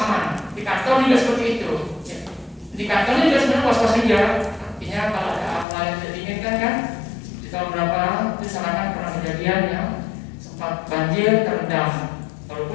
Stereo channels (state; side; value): drops out; right; at 5.7 s